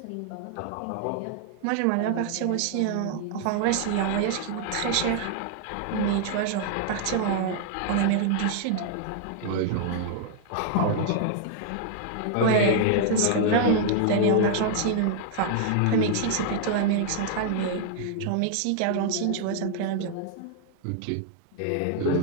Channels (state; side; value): different; both; correlation -0.01